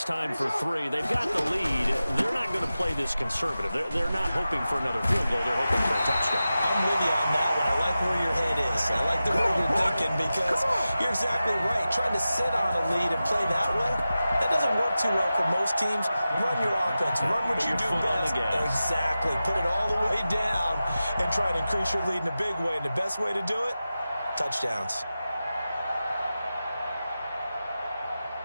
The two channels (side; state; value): both; inverted; correlation -0.94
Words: time for 3. They've got the lead. They're not going to play this conservative. They're not hoping for another field goal. They're hoping for a touchdown. I'm with you on that one. I like where your head is. I like the way you're thinking because you're exactly right. Trying to sit on a lead and play that way, that doesn't work too well for most teams. Run your offense. Run what you do best. Exactly. Put it all the way down and try to increase your lead in a big way. And the best way to do it, touchdowns.